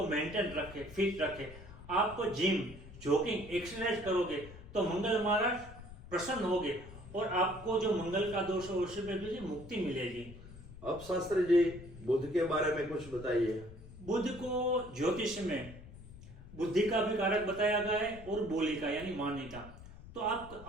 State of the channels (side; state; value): left; noise; rumble, 16 dB below the sound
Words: मेंटेन रखें, फिट रखें। आप जिम, जॉगिंग, एक्सरसाइज करोगे तो मंगल महाराज प्रसन्न होगे और आपको जो मंगल का दोष है उसमें भी मुक्ति मिलेगी। अब शास्त्री जी, बुध के बारे में कुछ बताइए। बुध को ज्योतिष में बुद्धि का भी कारक बताया गया है और बोली का यानी वाणी का। तो आप